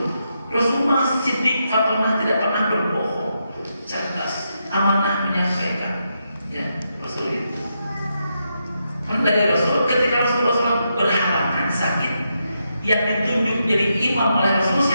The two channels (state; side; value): inverted; both; correlation -0.83